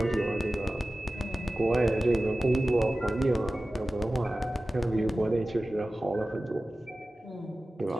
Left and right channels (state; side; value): normal; both; correlation 0.96